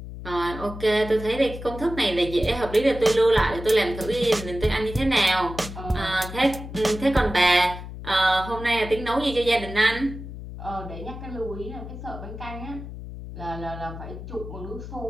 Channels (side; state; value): left; noise; hum, 11 dB below the sound